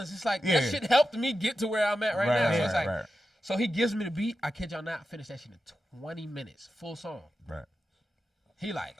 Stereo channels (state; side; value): normal; both; correlation 0.91